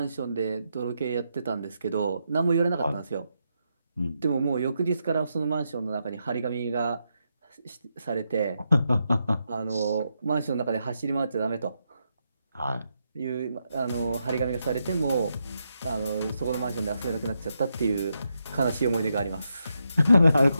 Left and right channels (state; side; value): inverted; both; correlation -0.83